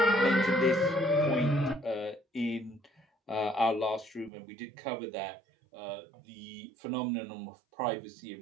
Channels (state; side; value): drops out; left; at 4.3 s